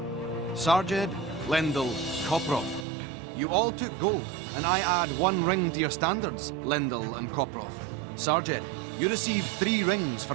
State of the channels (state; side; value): drops out; left; at 2.9 s